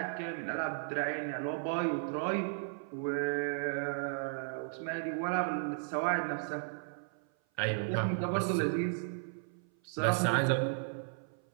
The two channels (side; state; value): left; silent; 55 dB below the other